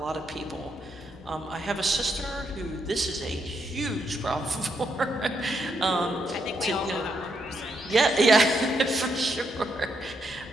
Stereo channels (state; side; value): normal; both; correlation 0.78